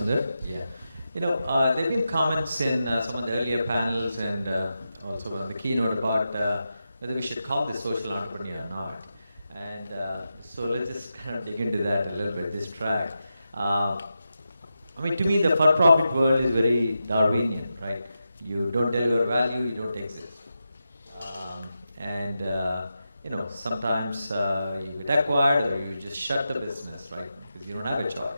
Yeah. There have been comments in some of the earlier panels and also on the keynote about whether we should call this social entrepreneur or not. And so let's just kind of dig into that a little bit, this track. To me, the for-profit world is very Darwinian, right? You don't deliver value, you don't exist. Sometimes you get acquired or you just shut the business, right? Because you don't have a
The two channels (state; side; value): inverted; both; correlation -0.89